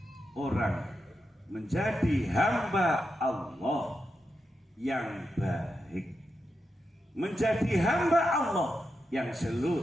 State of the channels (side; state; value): both; normal; correlation 0.87